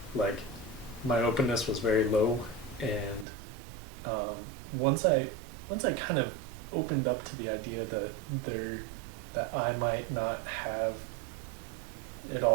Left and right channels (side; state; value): left; drops out; at 3.2 s